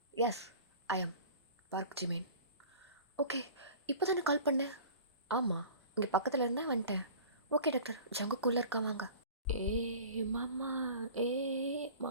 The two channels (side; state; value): both; inverted; correlation -0.41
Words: yes I am Park Jimin. Okay, இப்போ தானே கால் பண்ணேன். ஆமாம், இங்கே பக்கத்தில் இருந்தால் வந்துட்டேன். ஓகே டாக்டர், ஜங்குக்குள்ளே இருக்கா வாங்க.